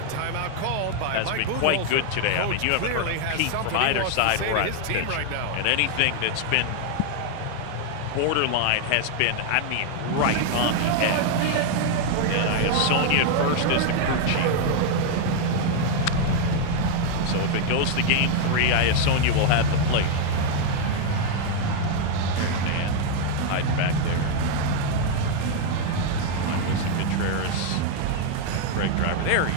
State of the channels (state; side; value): different; both; correlation 0.00